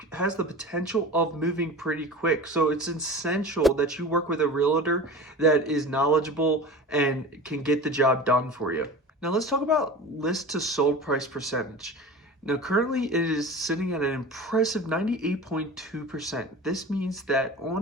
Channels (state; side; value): normal; both; correlation 0.34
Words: has the potential of moving pretty quick. So it's essential that you work with a realtor that is knowledgeable and can get the job done for you. Now let's talk about list to sold price percentage. Now, currently it is sitting at an impressive 98.2%. This means that